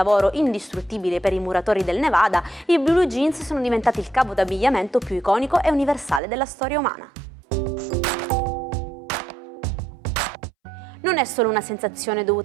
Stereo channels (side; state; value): left; drops out; at 6.2 s